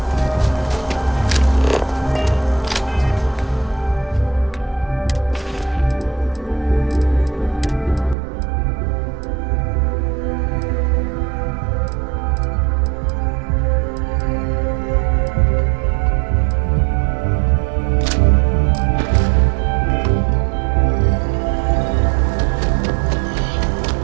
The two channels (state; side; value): drops out; left; at 8.2 s